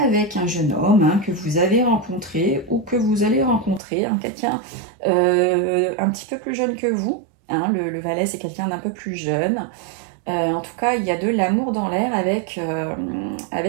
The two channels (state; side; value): drops out; left; at 3.8 s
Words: un jeune homme hein, que vous avez rencontré ou que vous allez rencontrer. Hein, quelqu'un un petit peu plus jeune que vous. Hein. Le valet, c'est quelqu'un d'un peu plus jeune. En tout cas, il y a de l'amour dans l'air